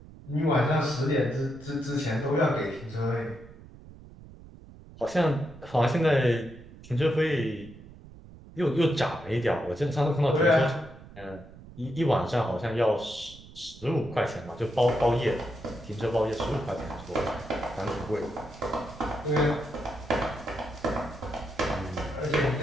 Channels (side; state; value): right; noise; rumble, 19 dB below the sound